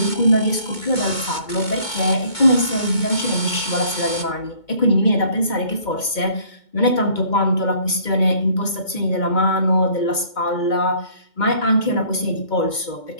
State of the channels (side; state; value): right; late; 2.2 ms